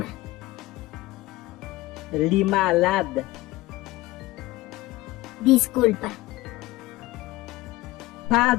Li malade. Disculpa.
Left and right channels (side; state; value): right; quieter; 18.7 dB